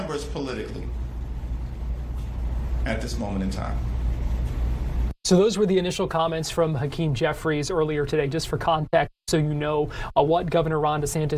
politically at this moment in time. So those were the initial comments from Hakeem Jeffries earlier today, just for context, so you know what Governor Ron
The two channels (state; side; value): identical; both; correlation 1.00